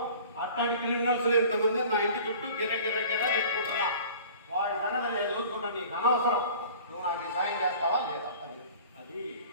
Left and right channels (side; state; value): both; inverted; correlation -0.44